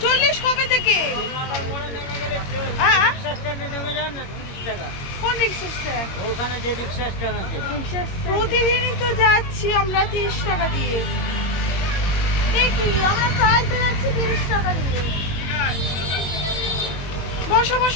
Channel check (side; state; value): right; late; 22 ms